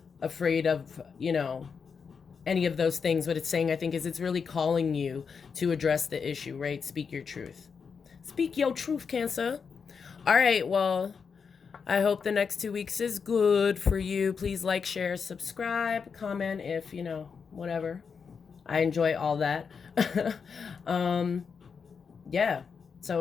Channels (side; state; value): right; quieter; 5.9 dB